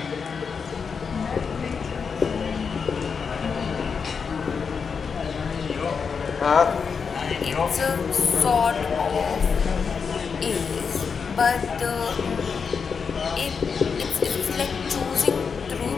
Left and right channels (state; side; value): quieter; right; 5.8 dB